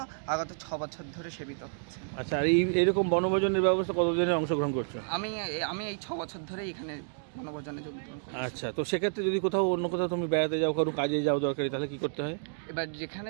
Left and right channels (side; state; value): left; silent; digital silence